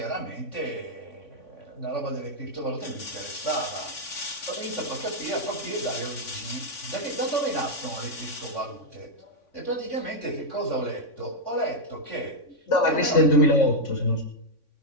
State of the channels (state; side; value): late; right; 3.6 ms